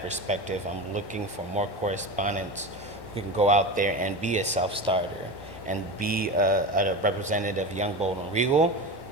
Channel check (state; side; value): late; right; 1.1 ms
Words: perspective, I'm looking for more correspondents who can go out there and be a self-starter and be a representative of Young, Bold, and Regal,